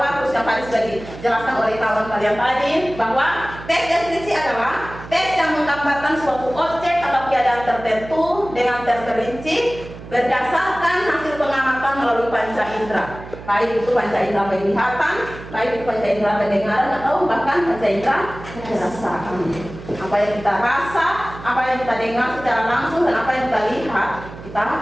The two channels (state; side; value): noise; right; hum, 14 dB below the sound